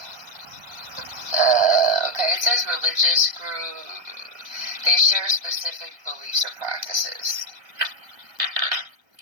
says religious group. They share specific beliefs or practices.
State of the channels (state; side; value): late; left; 1.3 ms